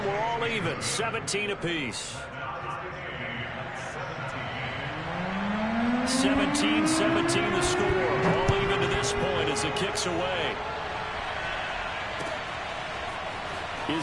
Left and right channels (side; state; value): both; identical; correlation 1.00